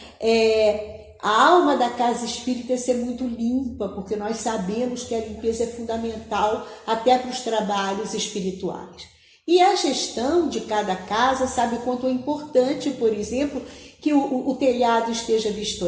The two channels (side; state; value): both; identical; correlation 1.00